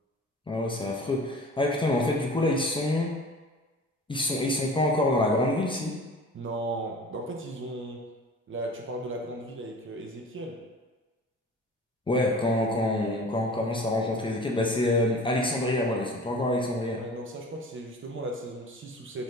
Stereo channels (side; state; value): both; normal; correlation 0.42